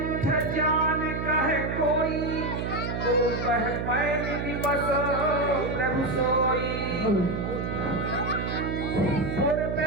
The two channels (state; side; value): noise; right; hum, 3 dB below the sound